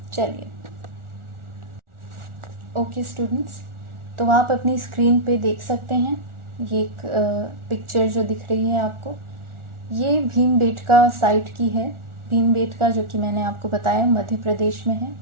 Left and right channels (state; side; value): late; left; 1.4 ms